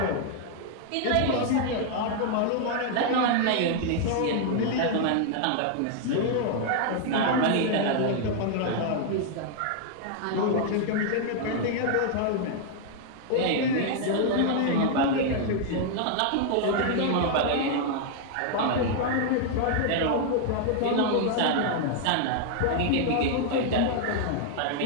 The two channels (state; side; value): different; both; correlation 0.00